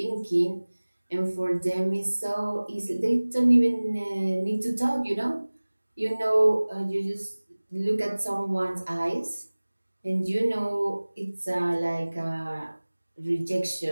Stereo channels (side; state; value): both; inverted; correlation -1.00